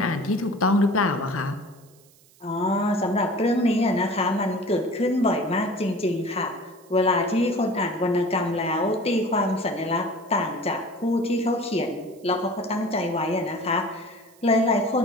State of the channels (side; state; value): right; noise; hiss, 29 dB below the sound